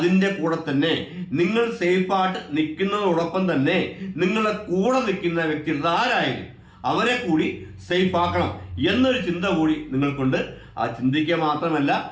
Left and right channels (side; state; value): both; identical; correlation 1.00